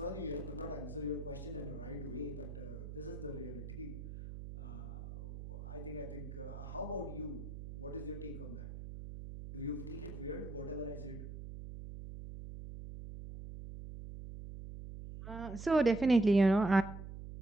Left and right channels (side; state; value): right; noise; hum, 9 dB below the sound